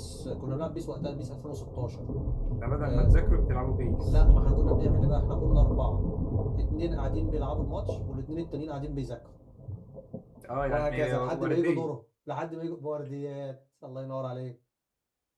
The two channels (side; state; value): both; identical; correlation 1.00